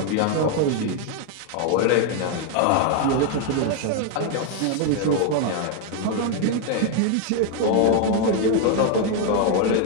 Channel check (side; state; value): both; different; correlation 0.01